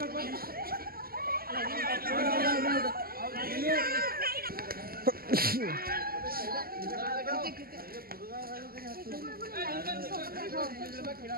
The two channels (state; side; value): late; left; 0.43 ms